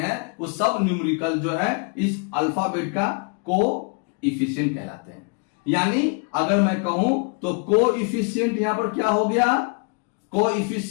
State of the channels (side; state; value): right; quieter; 36.9 dB